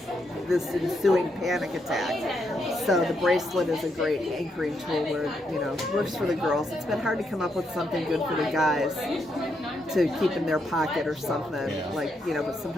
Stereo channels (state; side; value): normal; both; correlation 0.79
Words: this ensuing panic attack. So the bracelet is a great anchoring tool where, works for the girls. It's been hard to come up with something good for the guys to keep in their pocket or something, but